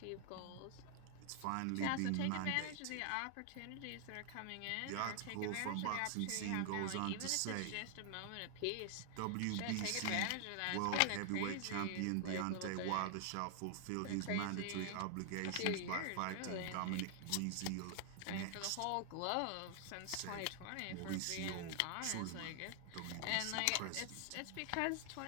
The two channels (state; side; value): different; both; correlation 0.00